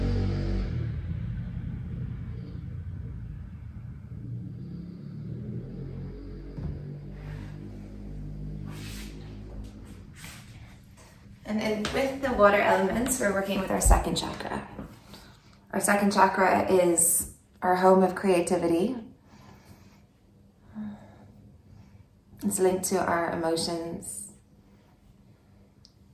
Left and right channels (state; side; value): identical; both; correlation 1.00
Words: And then with the water elements, we're working with our second chakra. Our second chakra is our home of creativity. It's linked to our emotions.